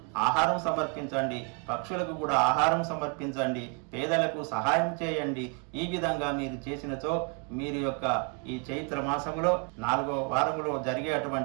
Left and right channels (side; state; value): left; quieter; 34.5 dB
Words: ఆహారం సమర్పించండి, పక్షులకు కూడా ఆహారం సమర్పించండి, పేదలకు సహాయం చేయండి. ఈ విధంగా మీరు చేసినచో మీరు యొక్క ఈ చైత్ర మాసంలో 4వ వారములో